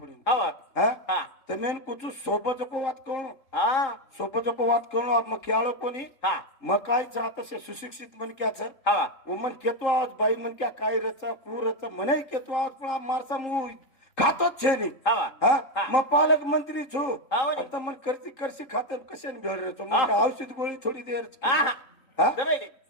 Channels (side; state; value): right; late; 3.8 ms